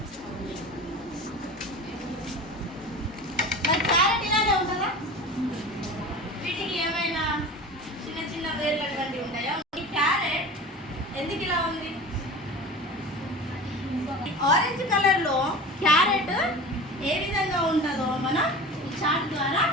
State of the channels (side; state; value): both; normal; correlation 0.34